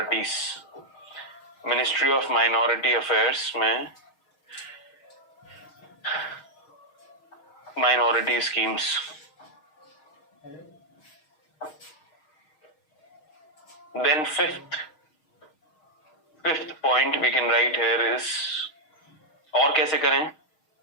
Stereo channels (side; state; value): right; late; 6.4 ms